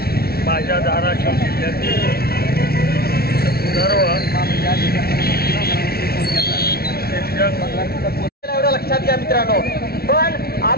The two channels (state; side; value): late; right; 0.45 ms